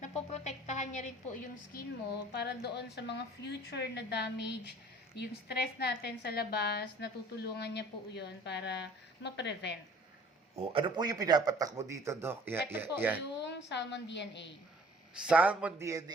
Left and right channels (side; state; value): both; normal; correlation 0.52